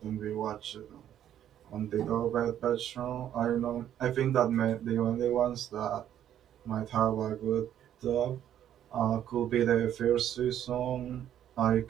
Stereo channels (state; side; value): quieter; left; 10.7 dB